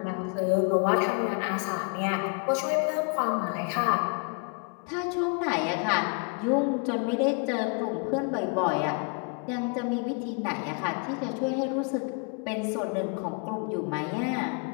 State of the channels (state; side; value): quieter; right; 34.6 dB